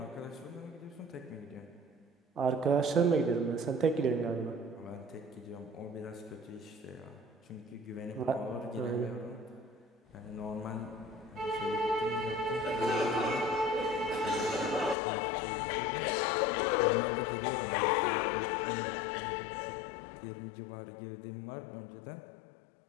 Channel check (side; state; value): right; drops out; at 15.0 s